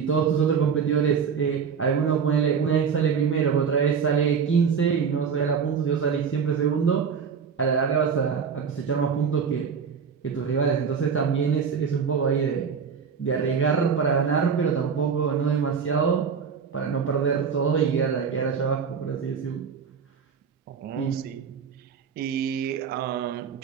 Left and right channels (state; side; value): quieter; left; 6.5 dB